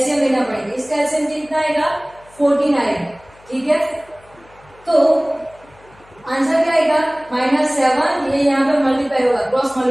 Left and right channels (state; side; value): noise; left; hum, 28 dB below the sound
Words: लेना पड़ेगा। इसका एलसीएम कितना आएगा 14 आएगा। ठीक है, तो आंसर क्या आएगा -7, ये यहाँ पे मल्टीप्लाई होगा, cross